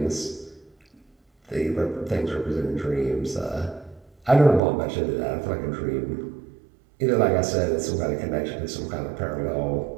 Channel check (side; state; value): left; drops out; at 4.6 s